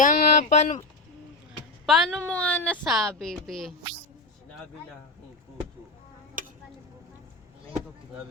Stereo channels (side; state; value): right; quieter; 3.1 dB